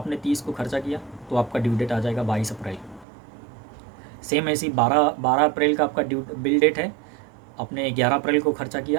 30 को खर्चा किया तो आपका ड्यू डेट आ जाएगा 22 अप्रैल। सेम ऐसी 12 अप्रैल का आपका बिल डेट है, आपने 11 अप्रैल को खर्चा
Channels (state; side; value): drops out; left; at 3.1 s